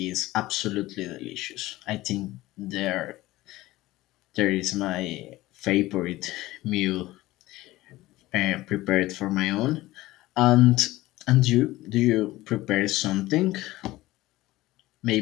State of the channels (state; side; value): quieter; right; 17.7 dB